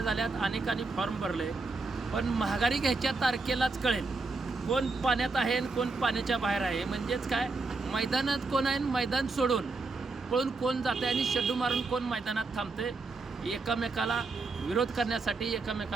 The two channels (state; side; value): quieter; left; 3.8 dB